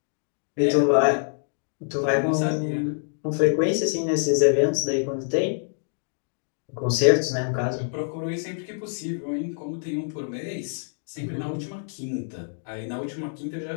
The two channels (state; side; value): silent; right; digital silence